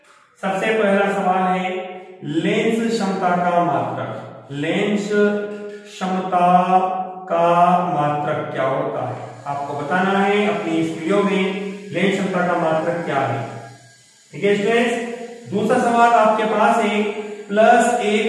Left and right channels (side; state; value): both; identical; correlation 1.00